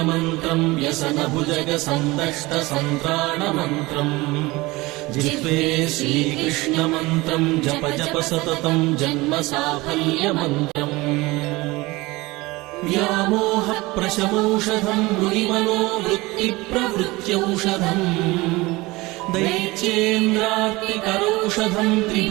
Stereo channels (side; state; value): left; quieter; 21.6 dB